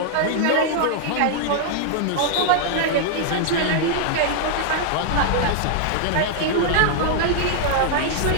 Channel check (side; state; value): both; different; correlation -0.01